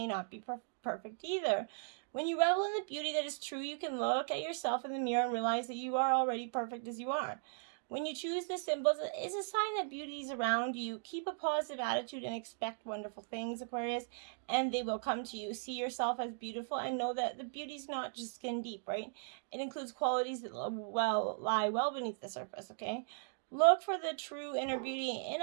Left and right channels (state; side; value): silent; left; digital silence